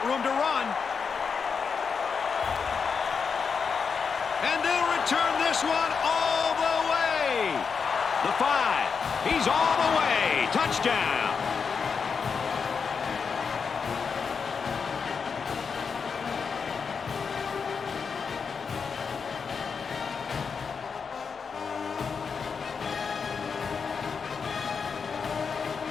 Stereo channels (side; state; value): right; quieter; 5.8 dB